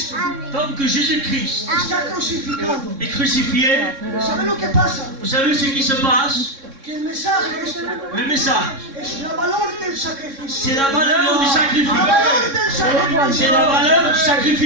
Tant que Jésus-Christ está crucificado, est crucifié, ¿sabe lo que pasa? vous savez ce qui se passe? Que el mensaje Le message, es la valor del sacrificio. c'est la valeur du La sacrifice. valor del sacrificio. C'est la valeur du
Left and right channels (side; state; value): left; late; 3.6 ms